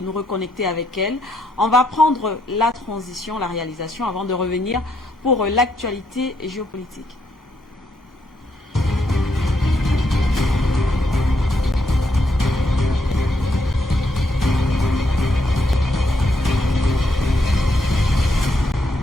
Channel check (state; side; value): normal; both; correlation 0.76